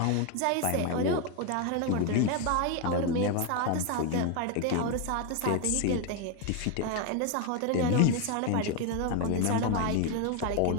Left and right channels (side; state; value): both; different; correlation 0.01